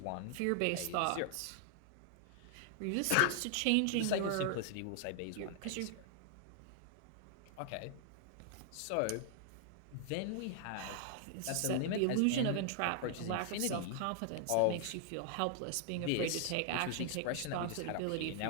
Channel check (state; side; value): different; both; correlation 0.00